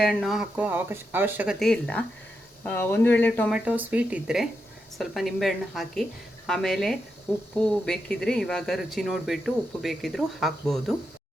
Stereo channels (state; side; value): normal; both; correlation 0.85